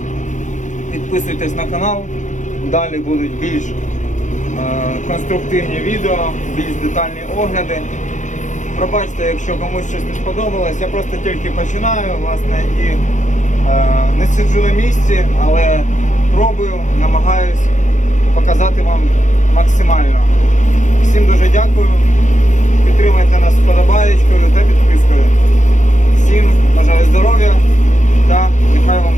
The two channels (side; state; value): right; late; 0.36 ms